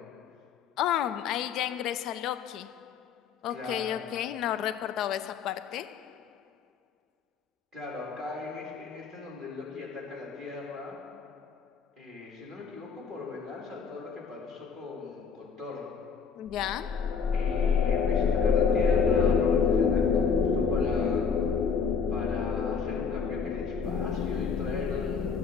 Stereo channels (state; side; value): quieter; right; 6.1 dB